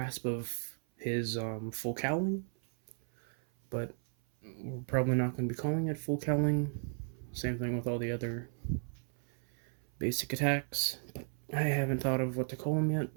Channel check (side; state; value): left; silent; 55 dB below the other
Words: of his full cowling, but we're probably not going to be calling it full cowling. Same thing with all the other basic attacks. I haven't thought of what to call them yet,